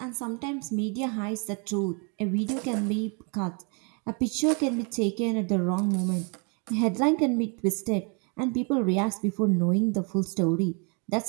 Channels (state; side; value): quieter; left; 35.7 dB